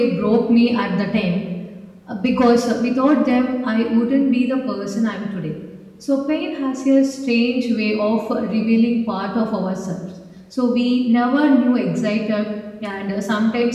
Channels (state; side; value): identical; both; correlation 1.00